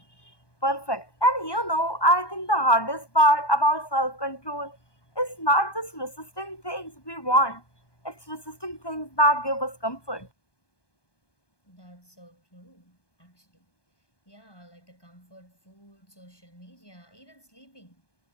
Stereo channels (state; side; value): late; right; 1.2 ms